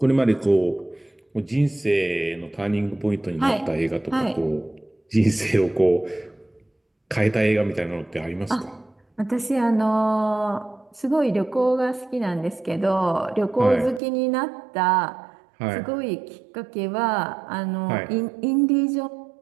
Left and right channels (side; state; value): left; drops out; at 14.0 s